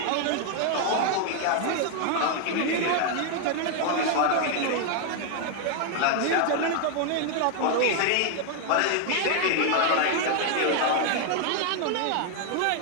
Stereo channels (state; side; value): different; both; correlation 0.00